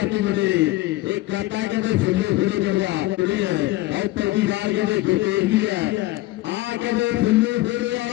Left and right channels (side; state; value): right; quieter; 18.0 dB